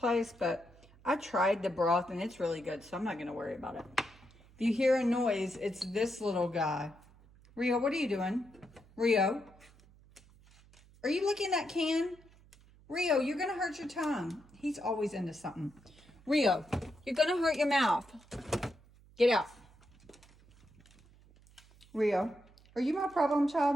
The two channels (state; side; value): noise; right; hum, 26 dB below the sound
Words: but I tried the broth and it's really good, so I'm not going to worry about it. If you hear a noise, it's this little guy. Rio, what are you doing? Rio, are you licking that can? Rio, you're going to hurt your tongue. He's always into something. Rio, you're going to hurt your mouth. Get out. Rio, are you my problem